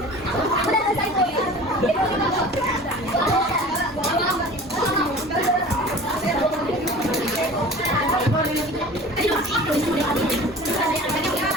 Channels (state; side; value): normal; both; correlation 0.41